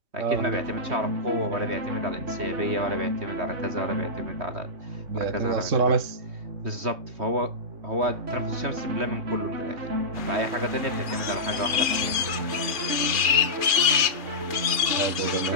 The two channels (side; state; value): left; late; 2.8 ms